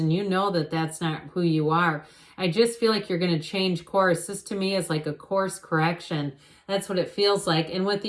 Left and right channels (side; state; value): both; identical; correlation 1.00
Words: you know that that's not who you are, I just feel like you're going to change course. This to me is like a course correction. That's what it feels like. And with